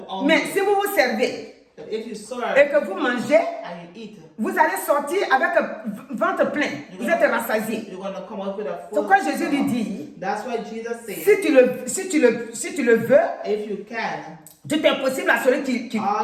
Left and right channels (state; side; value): identical; both; correlation 1.00